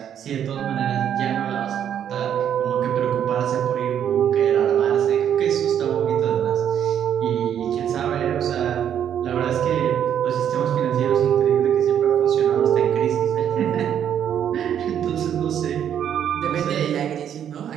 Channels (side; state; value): left; quieter; 9.4 dB